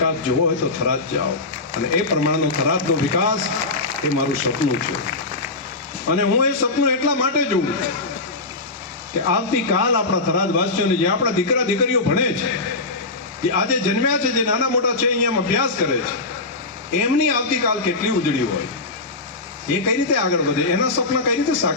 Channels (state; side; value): quieter; right; 3.3 dB